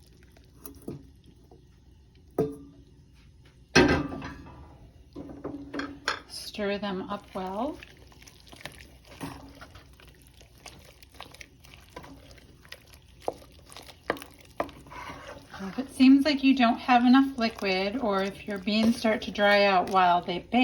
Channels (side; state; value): both; identical; correlation 1.00